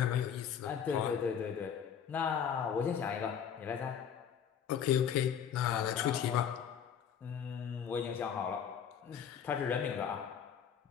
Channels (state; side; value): quieter; right; 8.2 dB